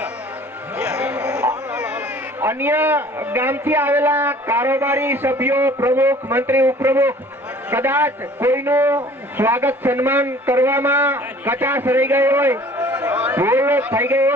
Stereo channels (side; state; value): both; normal; correlation 0.50